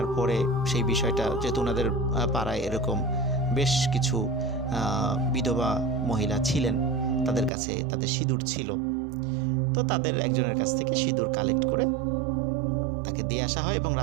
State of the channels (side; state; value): left; drops out; at 7.5 s